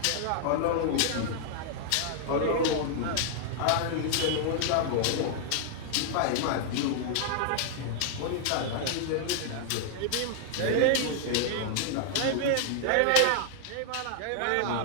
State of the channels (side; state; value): both; different; correlation -0.01